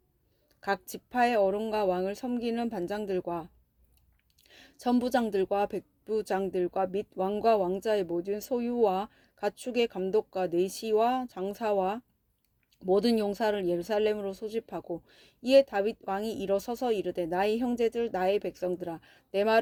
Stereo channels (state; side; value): identical; both; correlation 1.00